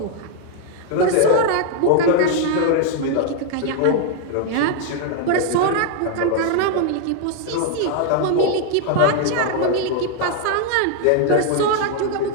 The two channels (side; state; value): both; different; correlation 0.00